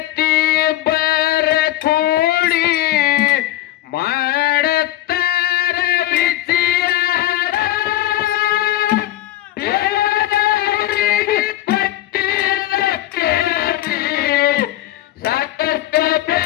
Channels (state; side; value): quieter; right; 14.6 dB